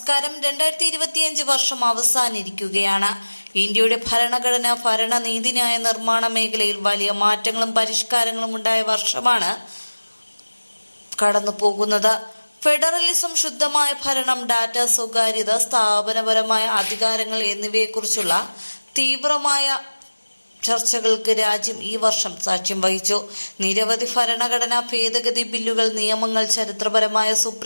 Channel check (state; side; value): inverted; both; correlation -1.00